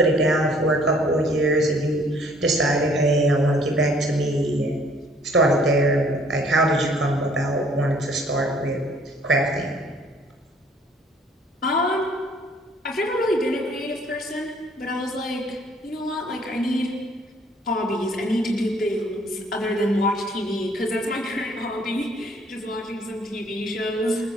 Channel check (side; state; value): both; normal; correlation 0.59